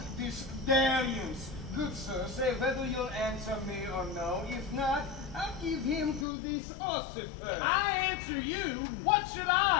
this dalliance. Good sir, say whether you'll answer me or no. If not, I'll give him to this ossifer. I answer you? What should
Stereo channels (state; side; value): drops out; right; at 6.2 s